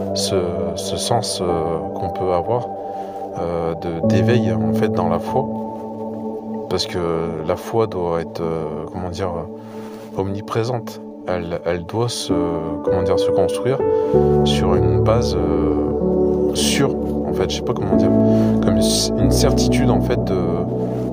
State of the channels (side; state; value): both; identical; correlation 1.00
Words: ce sens qu'on peut avoir d'éveil, en fait, dans la foi. Parce que la foi doit être, omniprésente. Elle doit se construire sur une base sûre. En fait, je sais pas comment dire, comme une certitude en fait